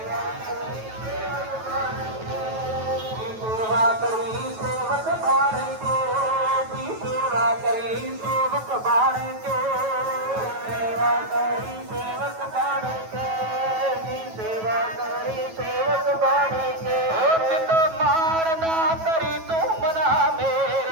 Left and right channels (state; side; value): late; left; 9.2 ms